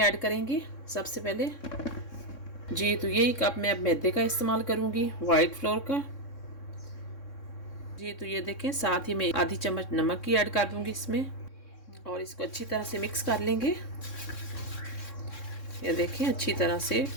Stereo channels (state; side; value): late; right; 3.6 ms